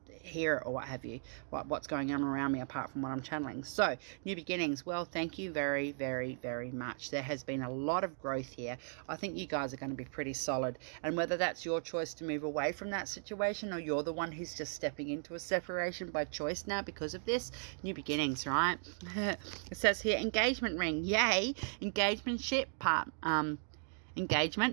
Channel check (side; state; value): left; silent; digital silence